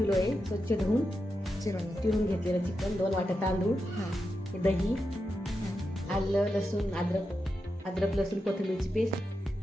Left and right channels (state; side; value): normal; both; correlation 0.88